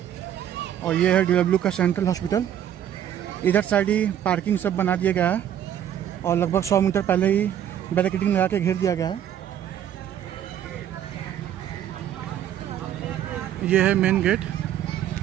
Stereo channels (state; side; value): quieter; left; 10.4 dB